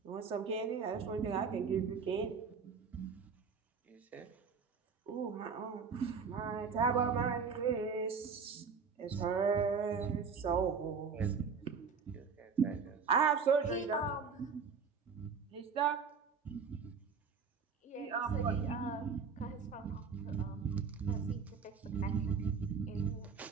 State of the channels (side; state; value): left; quieter; 5.6 dB